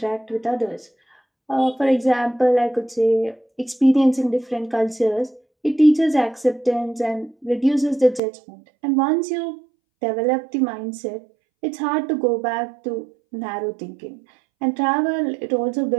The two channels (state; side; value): drops out; left; at 8.2 s